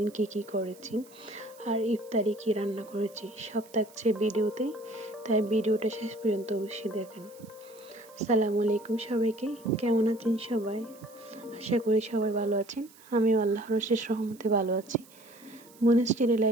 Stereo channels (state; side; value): noise; right; hiss, 24 dB below the sound